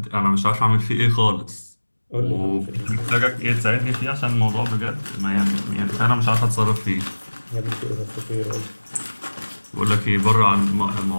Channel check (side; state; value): both; inverted; correlation -1.00